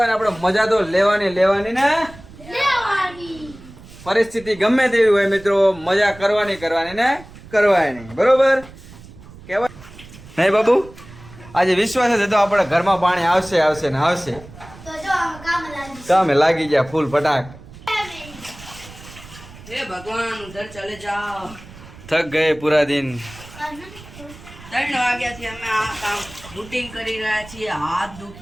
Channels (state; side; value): noise; right; rumble, 19 dB below the sound